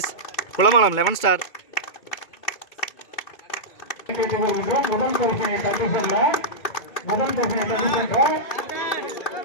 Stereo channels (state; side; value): late; right; 2.3 ms